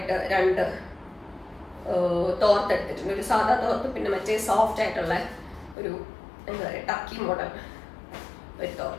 2 തോർത്ത് എടുത്തിട്ടുണ്ട്. ഒരു സാധാ തോർത്ത്, പിന്നെ മറ്റേ സോഫ്റ്റ് ആയിട്ടുള്ള ഒരു എന്താ പറയുക ടർക്കി മോഡൽ ഒരു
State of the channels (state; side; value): drops out; right; at 5.8 s